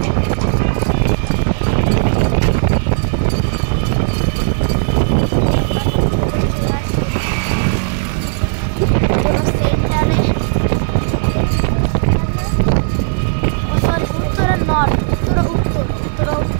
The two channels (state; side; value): silent; left; digital silence